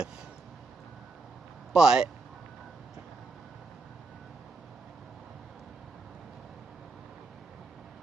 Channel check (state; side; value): quieter; left; 3.8 dB